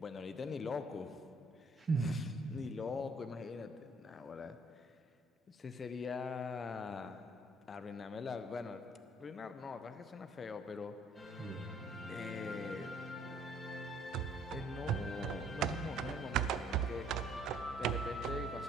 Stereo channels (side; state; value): both; normal; correlation 0.62